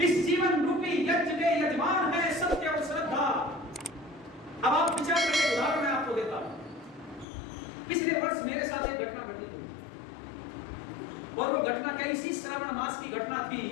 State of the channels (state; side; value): drops out; right; at 7.2 s